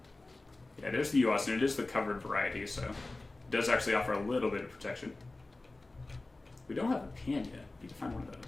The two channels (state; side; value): quieter; right; 3.1 dB